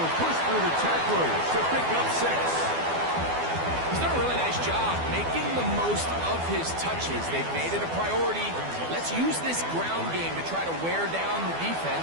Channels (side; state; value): left; late; 12 ms